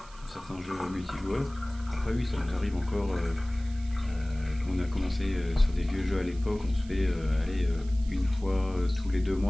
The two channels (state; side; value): noise; right; hiss, 23 dB below the sound